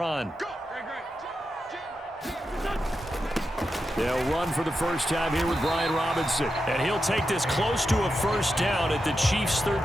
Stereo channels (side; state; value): both; normal; correlation 0.88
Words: They'll run for the first time here with Brian Robinson. And he'll take this close to a first down at the Chiefs'